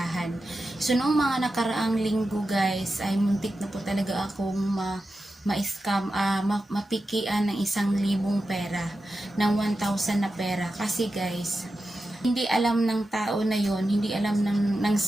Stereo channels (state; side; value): normal; both; correlation 0.91